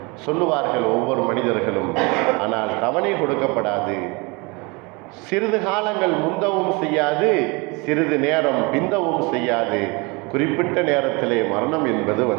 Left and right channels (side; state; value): left; quieter; 27.8 dB